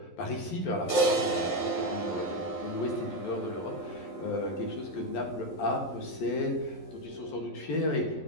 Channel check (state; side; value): late; right; 11 ms